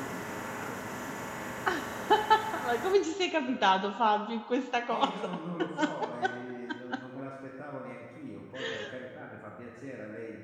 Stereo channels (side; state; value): both; identical; correlation 1.00